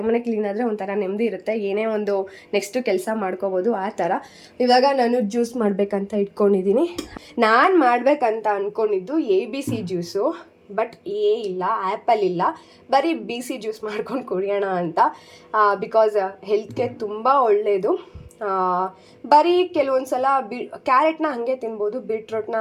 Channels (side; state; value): both; identical; correlation 1.00